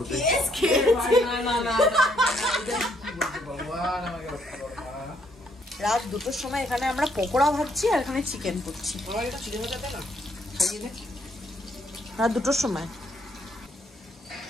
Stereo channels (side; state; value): both; normal; correlation 0.70